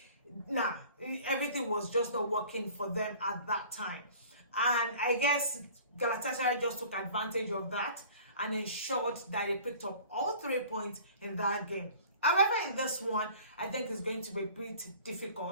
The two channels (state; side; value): inverted; both; correlation -0.47